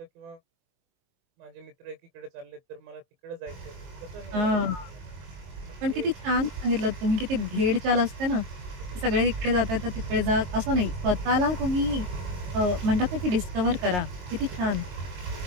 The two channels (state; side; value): late; left; 22 ms